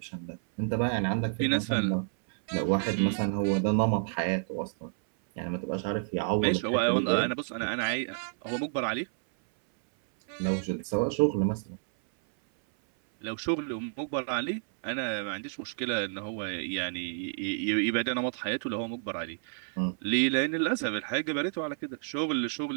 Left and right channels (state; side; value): silent; left; 58 dB below the other